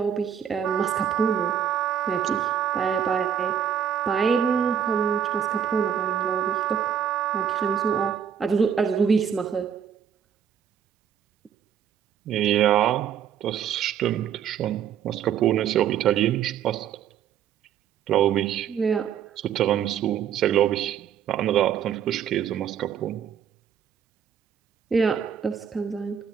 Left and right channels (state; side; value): quieter; left; 8.6 dB